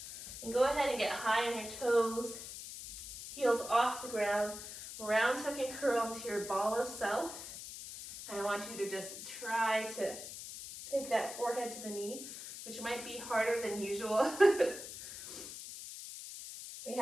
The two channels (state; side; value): noise; left; hiss, 10 dB below the sound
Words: And go ahead and get high on your toes, heels off the ground, round tuck and curl into your ball of self. And I want you to just try to take that forehead to the knee, which might be harder than usual. We